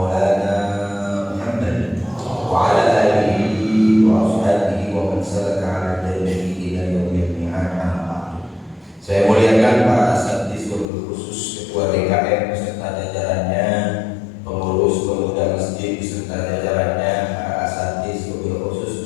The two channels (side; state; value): right; drops out; at 10.9 s